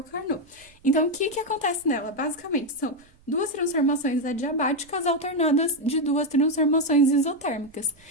Carnot. Então, o que acontece nela? Basicamente, são duas transformações adiabáticas alternadas de duas transformações isotérmicas.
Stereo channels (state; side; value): noise; right; rumble, 30 dB below the sound